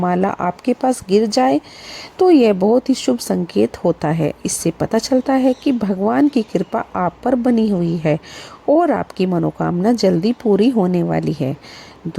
आपके पास गिर जाए तो यह बहुत ही शुभ संकेत होता है। इससे पता चलता है कि भगवान की कृपा आप पर बनी हुई है और आपकी मनोकामना जल्दी पूरी होने वाली है।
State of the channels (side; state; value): both; identical; correlation 1.00